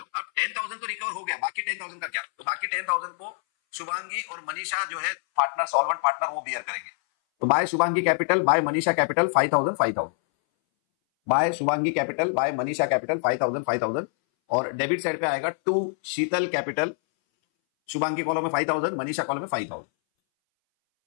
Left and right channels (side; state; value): right; silent; 60 dB below the other